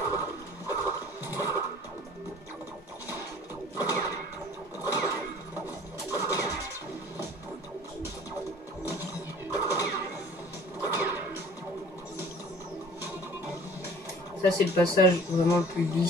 Ça, c'est le passage vraiment le plus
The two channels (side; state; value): both; normal; correlation 0.49